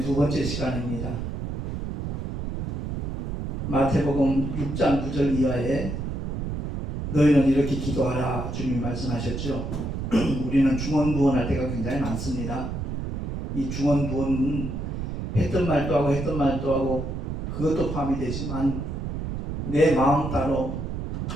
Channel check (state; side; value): noise; right; rumble, 4 dB below the sound